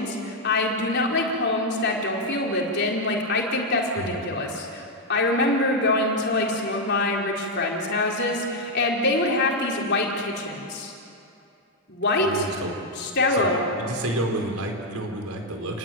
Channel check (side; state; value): both; normal; correlation 0.01